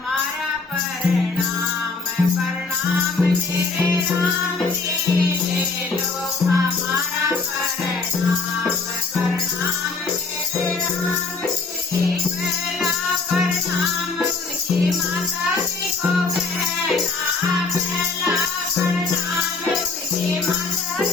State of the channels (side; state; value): right; quieter; 3.9 dB